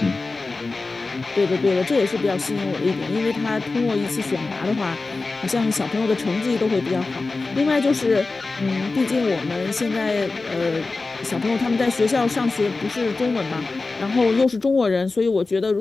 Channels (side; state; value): right; quieter; 3.7 dB